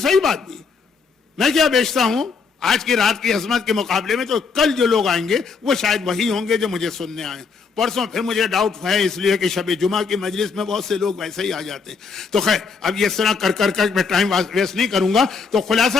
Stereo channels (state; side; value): quieter; right; 5.2 dB